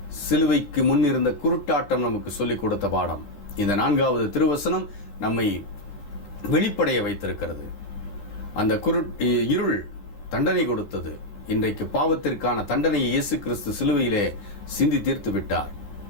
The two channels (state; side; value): late; right; 14 ms